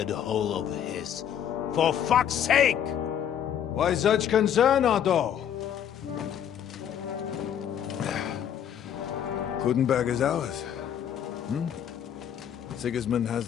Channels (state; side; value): quieter; right; 9.4 dB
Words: hole of his. For fuck's sake! Why such concern, Otto? Kuttenberg is ours. Sigismund has